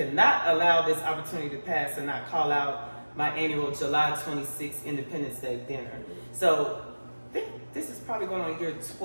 allow this opportunity to pass and not call out my annual July 26th Independence Day dinner. So I think this is probably going on year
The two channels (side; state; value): both; inverted; correlation -1.00